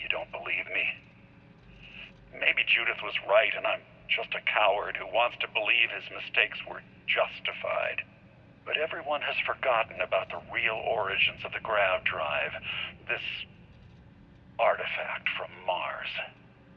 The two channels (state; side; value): identical; both; correlation 1.00